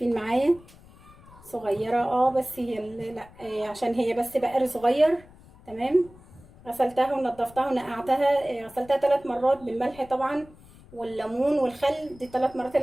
معايا، صغيرة بس هي لا عشان هي بس بقر صغير. تمام. غسلتها ونضفتها ونقعتها، غسلتها 3 مرات بالملح طبعا والليمون والخل، دي 3 مرات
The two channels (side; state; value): left; noise; rumble, 23 dB below the sound